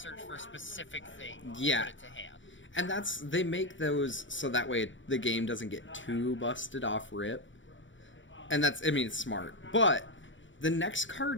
for a specific thing. Yeah. Put it to hand. And they make those so that way the game doesn't get too busted off rip. And it's smart. But the next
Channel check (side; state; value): right; late; 0.55 ms